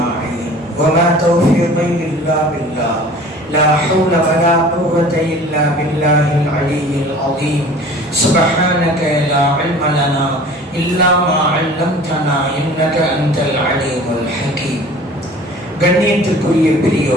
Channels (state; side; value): normal; both; correlation 0.45